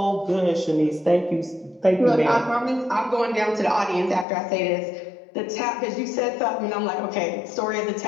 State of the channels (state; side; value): drops out; right; at 4.2 s